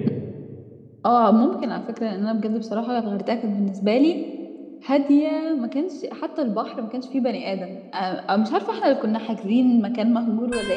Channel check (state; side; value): identical; both; correlation 1.00